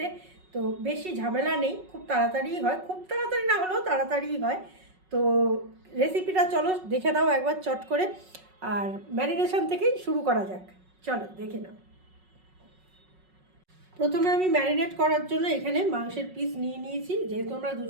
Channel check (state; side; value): late; left; 5.4 ms